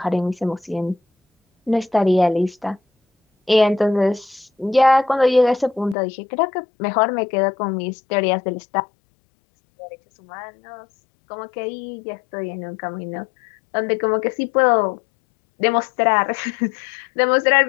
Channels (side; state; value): right; drops out; at 6.0 s